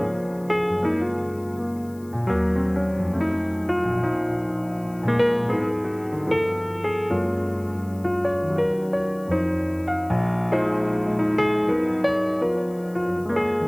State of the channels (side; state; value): left; noise; hiss, 26 dB below the sound